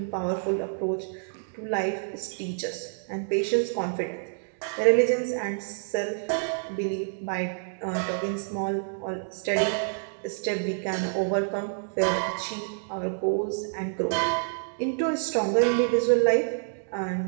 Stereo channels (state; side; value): silent; left; digital silence